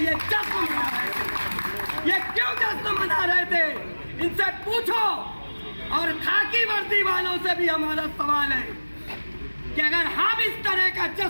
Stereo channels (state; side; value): inverted; both; correlation -1.00